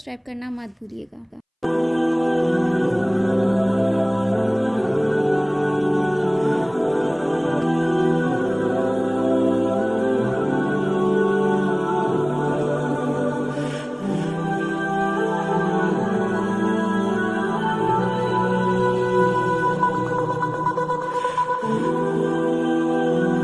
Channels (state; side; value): identical; both; correlation 1.00